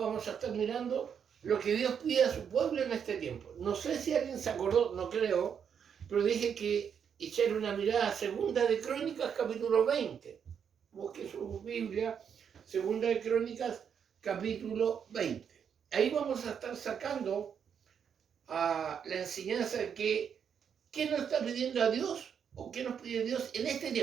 a estar mirando lo que Dios pide a su pueblo en este tiempo. No sé si alguien se acordó, no creo, pero dije que echar una mirada a Segunda de Crónicas, capítulo 20. Busque su Biblia, Segunda de Crónicas, capítulo 20. Ahí vamos a estar sacando la enseñanza de qué nos está pidiendo a Dios o qué nos pide Dios en este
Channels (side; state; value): left; quieter; 7.6 dB